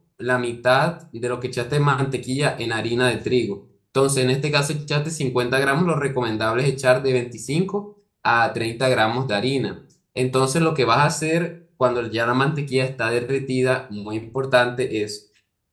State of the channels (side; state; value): both; identical; correlation 1.00